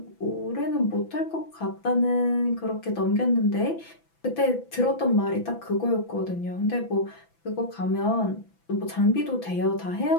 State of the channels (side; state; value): right; late; 6.0 ms